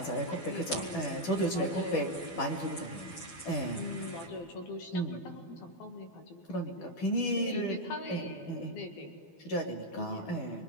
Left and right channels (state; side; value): late; right; 12 ms